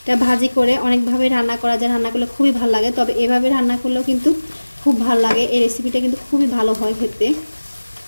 ভাজি করে অনেকভাবে রান্না করা যায়, রান্না করলে খুবই ভালো লাগে। তবে এভাবে রান্না করলেও কিন্তু খুব ভালো লাগে। এই রেসিপিটা কিন্তু খুবই ভালো হয় খেতে।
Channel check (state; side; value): inverted; both; correlation -1.00